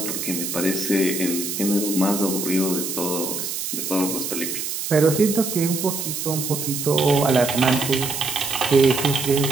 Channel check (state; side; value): noise; right; hiss, 4 dB below the sound